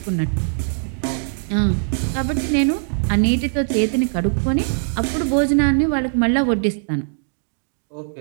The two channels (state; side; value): silent; left; digital silence